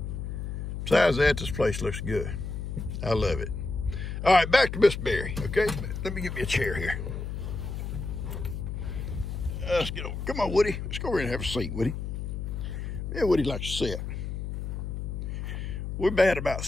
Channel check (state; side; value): noise; left; hum, 5 dB below the sound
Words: Besides that, this place looks good. I love it. All right, back to Miss Berry, okay? Let me get me a chair here. Let's get over. Come on, Woody. Let's go over here and have a seat, Woody. Yeah, Woody likes to sit. We're bad about